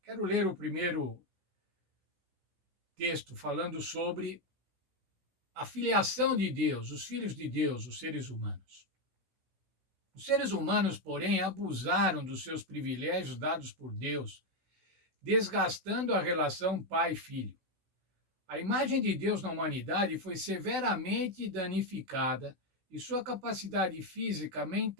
Quero ler o primeiro texto falando sobre a filiação de Deus, os filhos de Deus, os seres humanos. Os seres humanos, porém, abusaram dos seus privilégios dados por Deus, desgastando a relação pai-filho. A imagem de Deus na humanidade foi severamente danificada e sua capacidade física,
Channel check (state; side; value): late; left; 16 ms